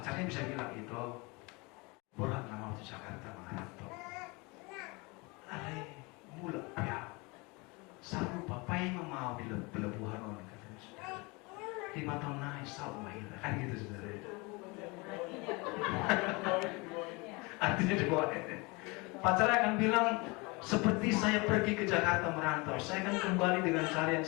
bisa bilang itu, borak nama waktu Jakarta mengantar. Ale mula ya. Saru papai mau di pelabuhan orang katanya, saudara. 5 tahun naik saru mahir kan gitu, saudara. Artinya dibawa. Pacarnya akan bilang, seperti saya pergi ke Jakarta merantau, saya akan kembali dengan cara yang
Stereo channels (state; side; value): quieter; right; 26.8 dB